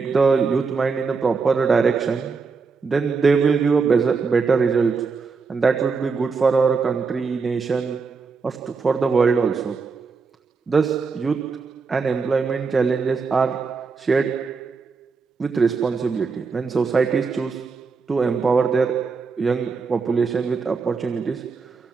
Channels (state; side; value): quieter; left; 4.9 dB